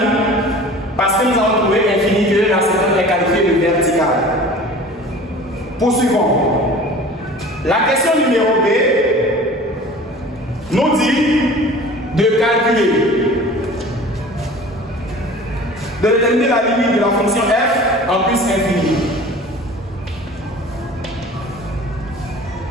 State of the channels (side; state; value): both; normal; correlation 0.42